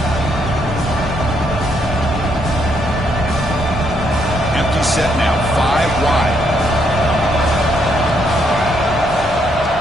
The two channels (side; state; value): both; normal; correlation 0.74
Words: Empty set now, 5 wide.